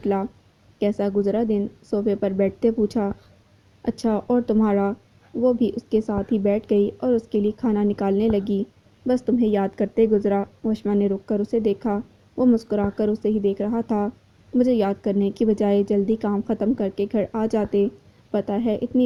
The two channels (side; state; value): both; identical; correlation 1.00